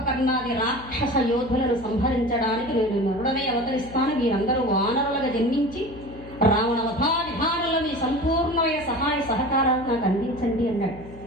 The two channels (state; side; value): noise; left; hum, 17 dB below the sound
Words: రాక్షస యోధులను సంహరించడానికి నేను నరుడనే అవతరిస్తాను. మీరందరూ వానరులుగా జన్మించి రావణ వధా విధానంలో మీ సంపూర్ణమైన సహాయ సహకారాలు నాకు అందించండి అన్నాడు.